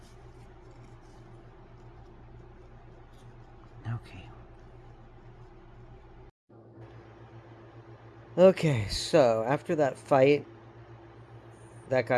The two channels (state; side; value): identical; both; correlation 1.00